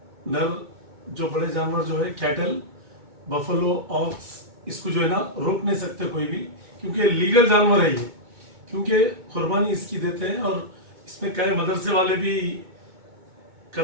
जो बड़े जानवर जो है कैटल बफलो ऑक्स, इसको जो है ना रोक नहीं सकते कोई भी, क्योंकि लीगल जानवर है ये, क्योंकि कुर्बानी इसकी देते हैं और इसमें क्या है मदरसे वाले भी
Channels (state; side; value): late; left; 2.2 ms